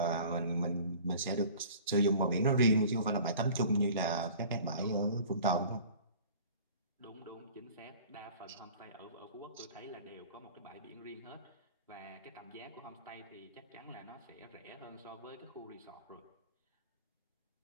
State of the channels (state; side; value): inverted; both; correlation -0.45